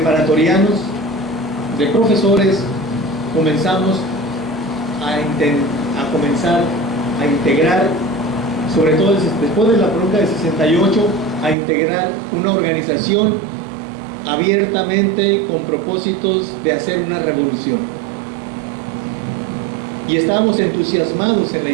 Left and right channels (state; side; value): drops out; left; at 11.6 s